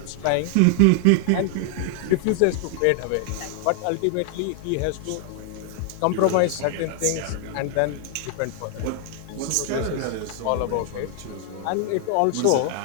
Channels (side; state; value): both; different; correlation 0.00